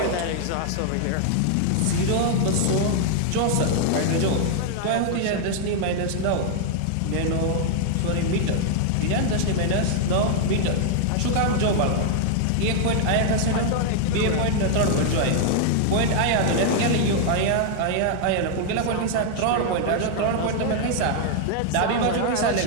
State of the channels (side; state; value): both; different; correlation 0.00